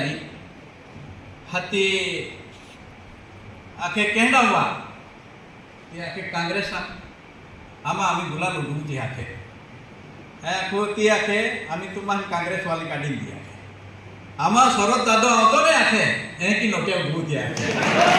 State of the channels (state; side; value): identical; both; correlation 1.00